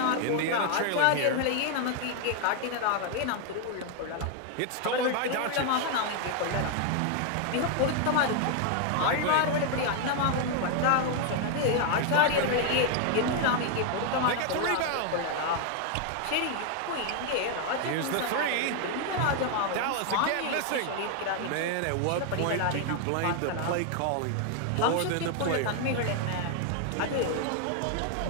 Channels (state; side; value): different; both; correlation 0.00